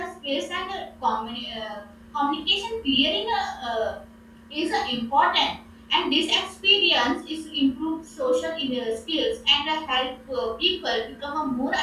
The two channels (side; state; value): both; identical; correlation 1.00